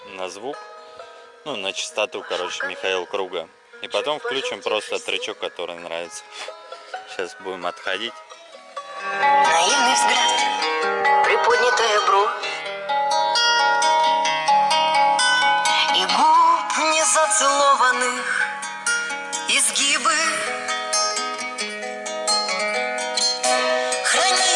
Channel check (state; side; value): identical; both; correlation 1.00